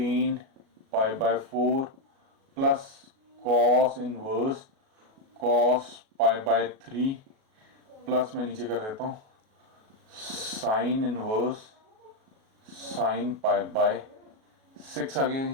pi by 4 plus cos inverse cos pi by 3 plus मैं नीचे कर देता हूँ sine inverse sine pi by 6 आ गया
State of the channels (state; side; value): late; left; 37 ms